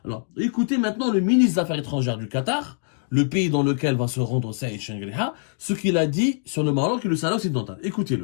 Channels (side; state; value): right; silent; 63 dB below the other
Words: Alors, écoutez maintenant le ministre des Affaires étrangères du Qatar, le pays dans lequel va se rendre Saïd Shengriha, ce qu'il a dit sur le Maroc et le Sahara occidental.